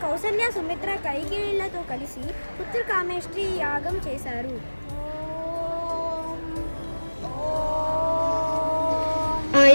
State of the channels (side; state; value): both; inverted; correlation -1.00